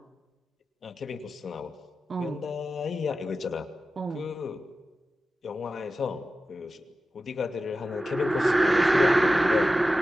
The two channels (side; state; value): both; normal; correlation 0.93